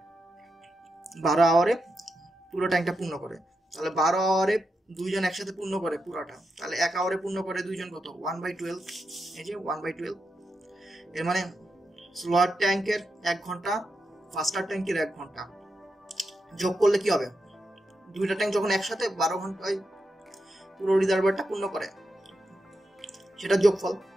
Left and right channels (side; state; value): both; normal; correlation 0.87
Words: পুরো ট্যাঙ্কটা পূর্ণ করে। তাহলে 12 আওয়ারে দুইজন একসাথে পূর্ণ করে পুরোটা, তাহলে 1 আওয়ারে পূর্ণ করে দুইজন কত? 1/12। এই যে 1/12। এর মানে স্লোয়ার ট্যাঙ্কের 1 ঘন্টা, ফার্স্টার ট্যাঙ্কের 1 ঘন্টা যোগ করলে কি হবে? দুইটা ট্যাঙ্ক যখন একসাথে 12 ঘন্টায় পুরো রিজার্ভারটা পূর্ণ করে, সেটা যোগফল।